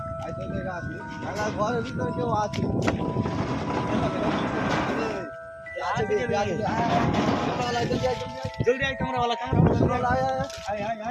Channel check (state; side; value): identical; both; correlation 1.00